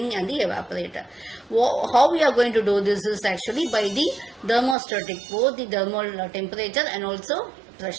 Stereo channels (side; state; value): left; drops out; at 4.8 s